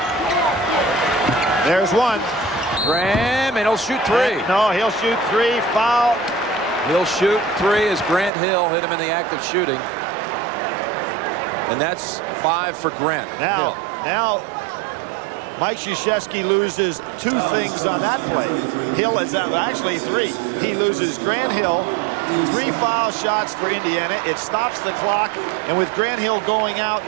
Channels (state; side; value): drops out; left; at 8.3 s